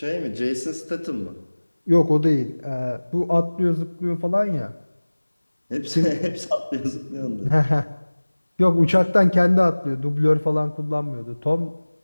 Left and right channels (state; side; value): inverted; both; correlation -1.00